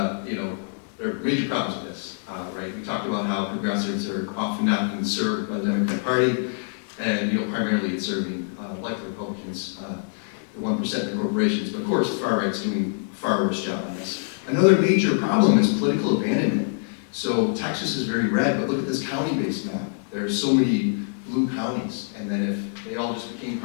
are major problems with this, right? We talked about how progressives are often not being served by the Democratic Party, and, primarily it's serving, like the Republicans, the 1% in corporations. But of course, the far right's doing a far worse job on this. Another major problem is political abandonment. So Texas is very red, but look at this county-based map. There are so many blue counties, and then if they all just became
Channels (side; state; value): right; silent; digital silence